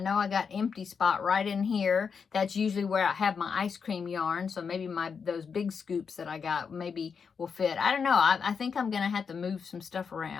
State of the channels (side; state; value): right; quieter; 6.0 dB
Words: I got empty spot right in here. That's usually where I have my ice cream yarn, so maybe those big scoops that I got maybe will fit. I don't know. I think I'm going to have to move some stuff